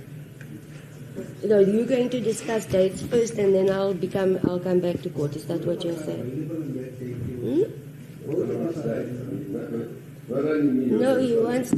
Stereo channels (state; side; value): identical; both; correlation 1.00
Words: No, you're going to discuss dates first, and then I'll come back to court. Is that what you're saying? Available on that day. No, he wants